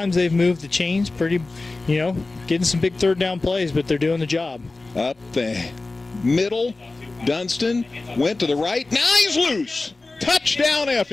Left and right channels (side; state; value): right; quieter; 3.4 dB